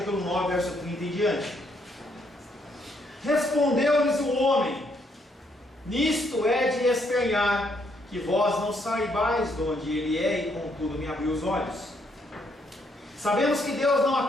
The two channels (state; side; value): normal; both; correlation 0.73